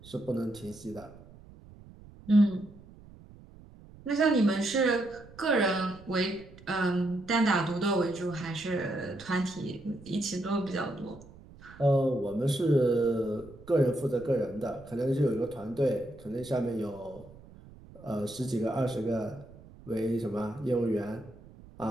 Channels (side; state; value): right; noise; rumble, 21 dB below the sound